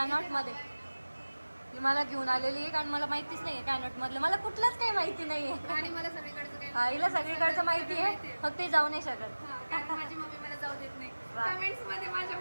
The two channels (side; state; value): both; inverted; correlation -1.00